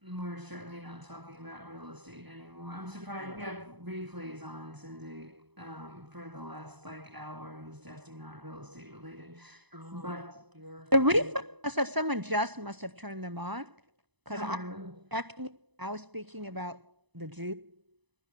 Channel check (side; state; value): left; late; 1.0 ms